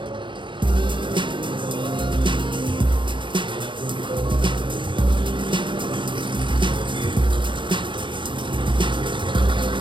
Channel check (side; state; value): left; late; 0.23 ms